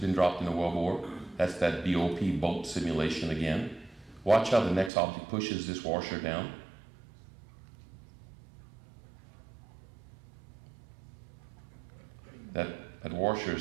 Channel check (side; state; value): left; drops out; at 4.9 s